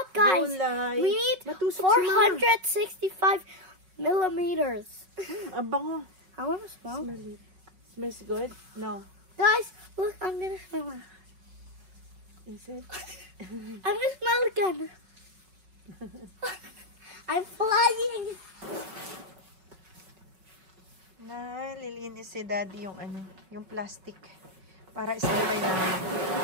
guys. Gulay. We need Matusok 465 millimeters. Ang bango. I want to smell. Smell it. Smells good? No. Guys, look, I'm going to smell it. Is it? I'm going to smell it again. I'm flying. Lilinis si Daddy yung yung plastic para isabay namin.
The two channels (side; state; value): left; late; 5.4 ms